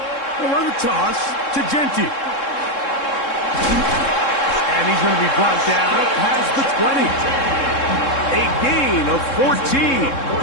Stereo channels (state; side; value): late; right; 3.7 ms